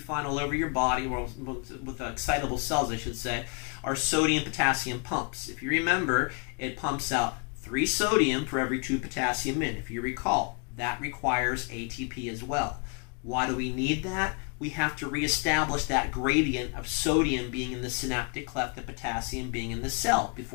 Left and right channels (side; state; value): right; quieter; 36.3 dB